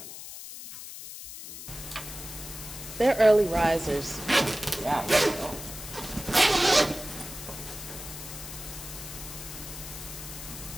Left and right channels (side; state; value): left; noise; hiss, 11 dB below the sound